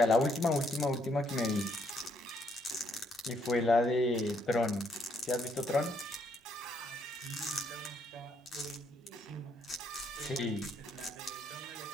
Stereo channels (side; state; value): both; normal; correlation 0.71